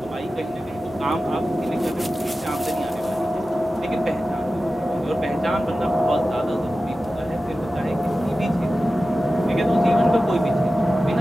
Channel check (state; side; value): normal; both; correlation 0.94